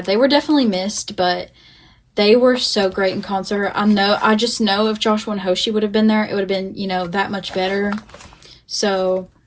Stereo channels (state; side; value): identical; both; correlation 1.00